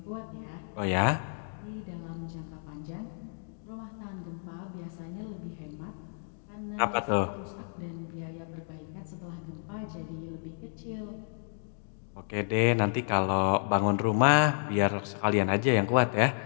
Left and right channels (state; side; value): silent; right; digital silence